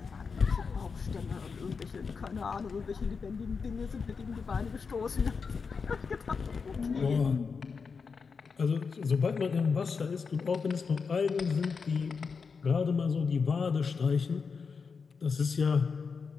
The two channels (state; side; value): quieter; right; 5.3 dB